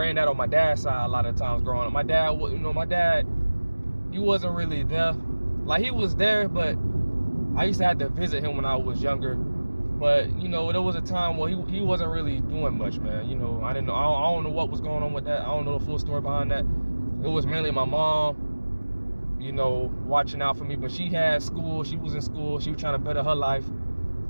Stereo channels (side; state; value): both; inverted; correlation -1.00